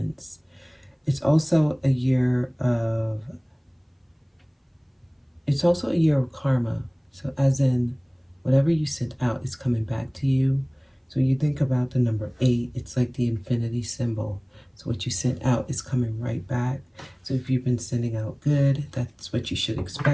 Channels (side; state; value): both; identical; correlation 1.00